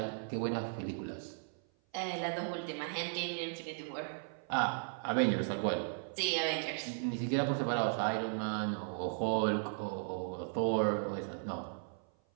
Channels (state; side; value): silent; left; 53 dB below the other